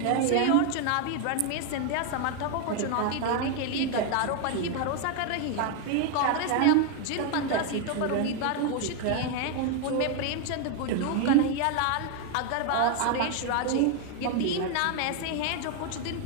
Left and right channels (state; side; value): different; both; correlation 0.01